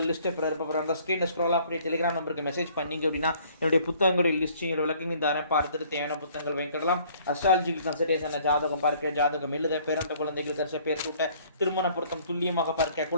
லிஸ்ட்டை பிறப்பாங்க. ஸ்க்ரீன் ஸ்க்ரோல் அப்படியே டெலிகிராம் நம்பருக்கு மெசேஜ் பண்ணிங்க அப்படின்னா என்னுடைய புத்தகங்களுடைய லிஸ்டிங் விளக்கங்க தரேன். பார்த்துட்டு தேவையான புத்தகங்கள் வாங்கிக்கலாம். அஸ்ட்ராலஜிக்கல் கன்சல்டேஷன் ஜாதகம் பார்க்க, ஜாதகம் எழுத, பிறந்த குழந்தைகள் தரிச பேர் சூட்ட, திருமண பொருத்தம் துல்லியமாக பார்க்க,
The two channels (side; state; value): both; inverted; correlation -0.58